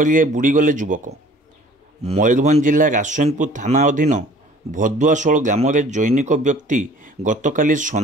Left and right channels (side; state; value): both; normal; correlation 0.51